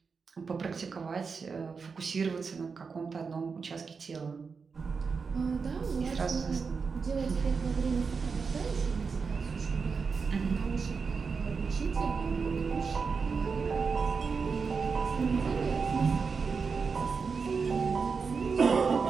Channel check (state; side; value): quieter; left; 5.2 dB